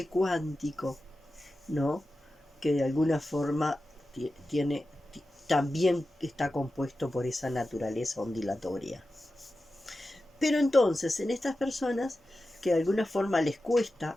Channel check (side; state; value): both; normal; correlation 0.93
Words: cuántico, ¿no? Que de alguna forma también está compuesto por esa naturaleza ondulatoria. Pero entonces, en estas personas que de alguna forma les